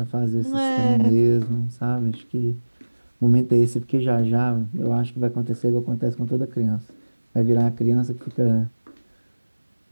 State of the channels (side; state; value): both; inverted; correlation -1.00